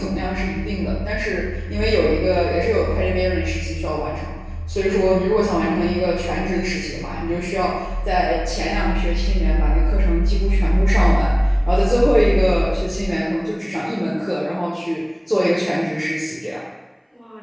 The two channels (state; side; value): identical; both; correlation 1.00